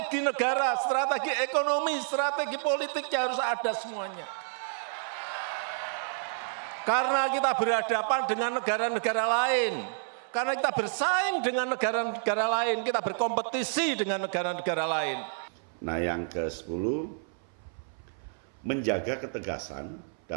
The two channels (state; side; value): silent; left; 57 dB below the other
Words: negara, strategi ekonomi, strategi politiknya harus ada semuanya. Karena kita berhadapan dengan negara-negara lain, karena kita bersaing dengan negara-negara lain, kita berkompetisi dengan negara-negara lain. Nah, yang ke-10, menjaga ketegasan